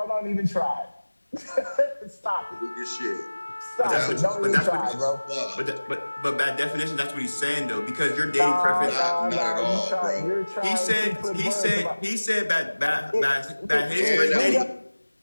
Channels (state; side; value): inverted; both; correlation -1.00